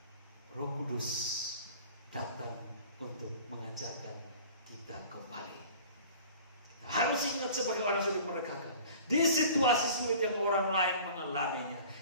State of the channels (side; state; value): both; inverted; correlation -0.44